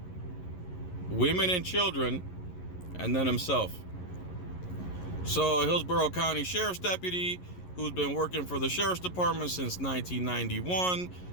women and children, and then himself. So, a Hillsborough County Sheriff's deputy who's been working for the Sheriff's Department since 1991.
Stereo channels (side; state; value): right; late; 11 ms